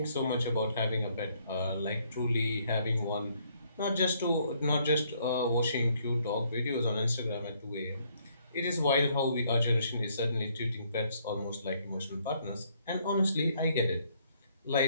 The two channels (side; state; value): both; inverted; correlation -0.68